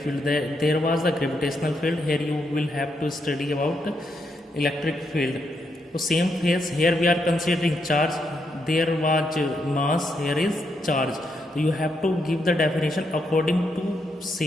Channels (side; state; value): both; normal; correlation 0.80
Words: There was the gravitational field, here you will have to study about electric field. So same case, here we are considering charge, there was mass, here is charge. You have to give the definition according